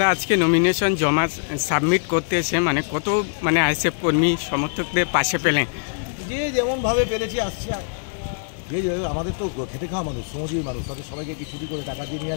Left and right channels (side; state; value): right; silent; 64 dB below the other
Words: আজকে নমিনেশন জমা সাবমিট করতে এসে মানে কত মানে আইএসএফ কর্মী সমর্থকদের পাশে পেলেন? যে যেমনভাবে পেরেছি আসছি। আমাদের তো খেটে খাওয়া মানুষ, শ্রমজীবী মানুষ, তাদের সবাইকে কি ছুটি করে টাকা দিয়ে নিয়ে